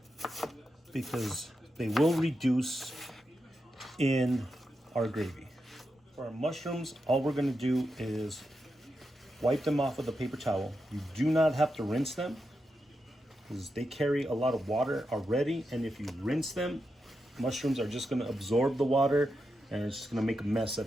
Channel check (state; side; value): normal; both; correlation 0.87